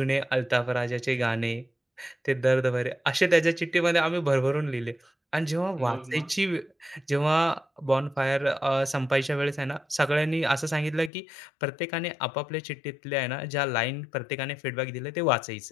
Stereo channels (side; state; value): right; drops out; at 11.1 s